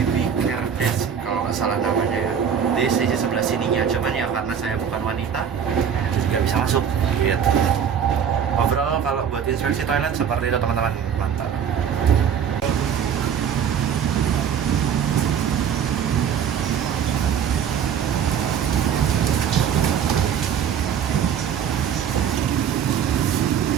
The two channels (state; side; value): quieter; left; 7.9 dB